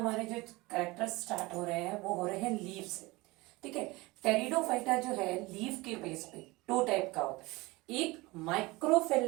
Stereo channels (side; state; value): left; quieter; 22.4 dB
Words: जो कैरेक्टर्स स्टार्ट हो रहे हैं वो हो रहे हैं लीफ से। ठीक है। टेरिडोफाइटा जो है लीफ के बेस पे दो टाइप का होता है। एक